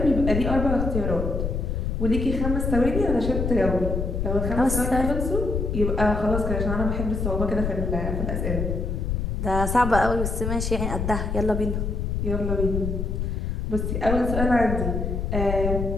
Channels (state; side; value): noise; left; rumble, 1 dB below the sound